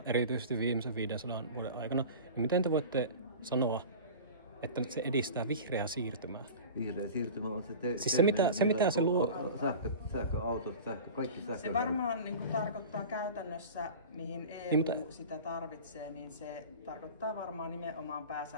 erityisesti viimeisen 500 vuoden aikana, niin miten te voitte sanoa, että se edistää vihreää siirtymää? Vihreä siirtymä on siis se mitä se luo. Sähköautot, kaikki sähkö. Se varmaan niin tarkoittaa käytännössä, mihin EU sitä tarvitsee, niin se tarkoittaa varmaan nimenomaan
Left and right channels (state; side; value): inverted; both; correlation -0.35